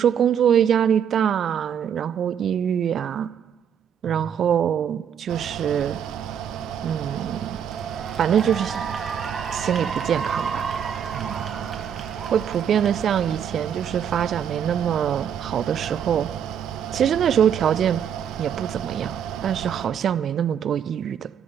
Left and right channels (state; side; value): quieter; left; 8.5 dB